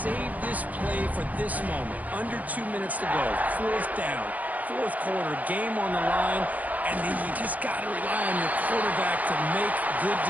this play for this moment. Under 2 minutes to go. 4th down. 4th quarter. Game on the line. And then you just got to rely on your quarterback to make good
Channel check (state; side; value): late; left; 0.077 ms